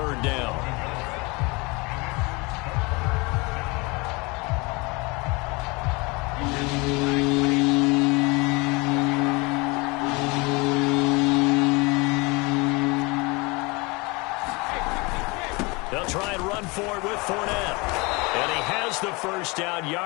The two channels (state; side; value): quieter; right; 26.7 dB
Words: down. They'll try and run for it with Fournette. And he has the first down